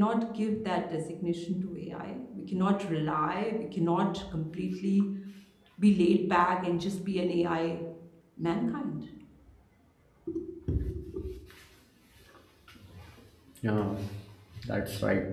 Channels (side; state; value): both; identical; correlation 1.00